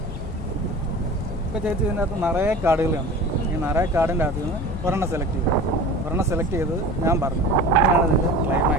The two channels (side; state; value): both; normal; correlation 0.37